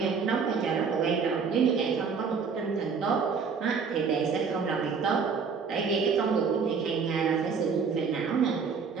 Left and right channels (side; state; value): left; quieter; 5.6 dB